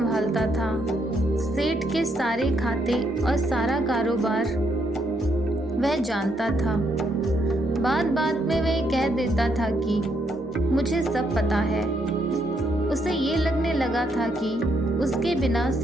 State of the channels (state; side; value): normal; both; correlation 0.75